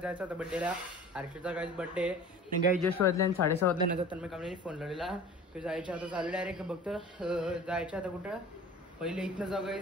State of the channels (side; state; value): both; normal; correlation 0.41